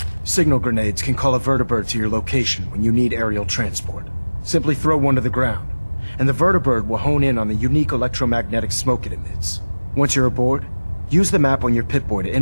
Signal grenades can call a vertibird to your location when you need aerial transport. Simply throw one to the ground, and the vertibird will hone in on the unique electromagnetic smoke it emits. Once you're aboard, use the map on your Pip-Boy to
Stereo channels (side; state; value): both; inverted; correlation -1.00